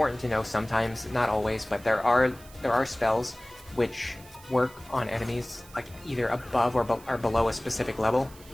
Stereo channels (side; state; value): right; noise; hiss, 22 dB below the sound